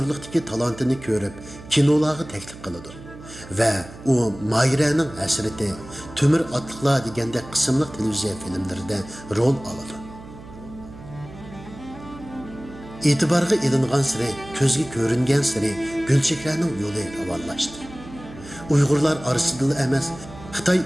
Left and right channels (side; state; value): right; noise; hum, 16 dB below the sound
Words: talantini ko'rib, kinolarga taklif qiladi va u Mayraning hasrati, Temir otliqlar deganda qismli televiziya filmlarida rol oladi. E'tiborga ilingan siri, ko'zga ko'ringan siri Gulchehraning yo'li ravonlashdi. Uyg'urlar orasida emas, Xitoy